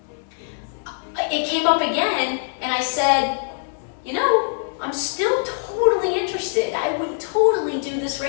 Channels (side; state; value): right; silent; 64 dB below the other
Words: it came up again, and I said, I'm still totally interested. I would totally do this